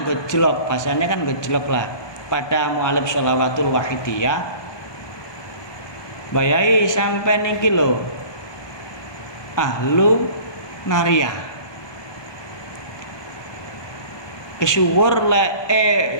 gejlok, bahasanya kan gejlok lah pada mu'alib sholawatul wahidiyah, bayai sampai niki lho ahlu naria kesuwur le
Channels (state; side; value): late; right; 1.2 ms